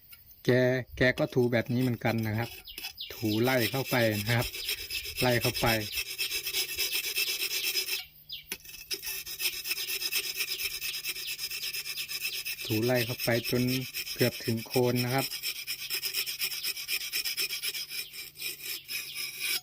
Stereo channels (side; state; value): both; identical; correlation 1.00